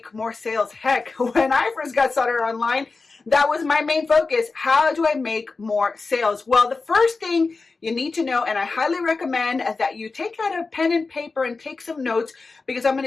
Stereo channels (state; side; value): quieter; right; 4.1 dB